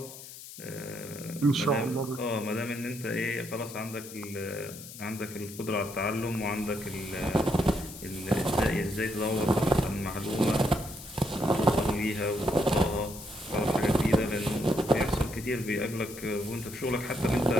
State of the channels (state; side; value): noise; left; hiss, 14 dB below the sound